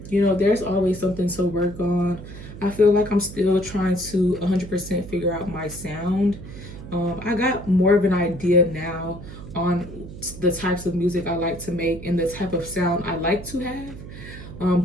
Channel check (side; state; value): right; noise; hum, 13 dB below the sound